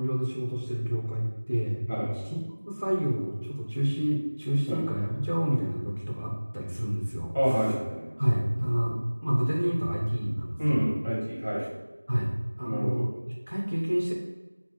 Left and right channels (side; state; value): both; inverted; correlation -1.00